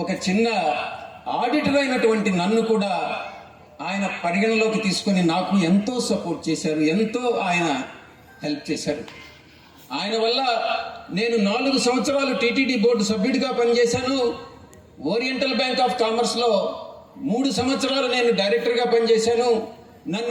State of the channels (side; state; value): both; identical; correlation 1.00